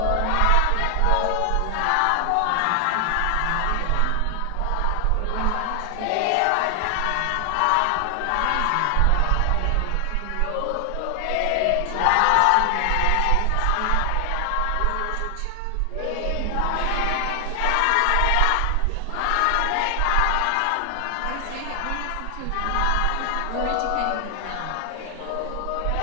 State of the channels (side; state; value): both; different; correlation 0.00